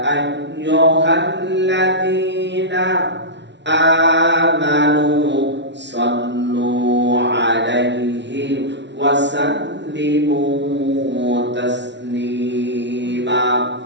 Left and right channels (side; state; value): left; late; 0.51 ms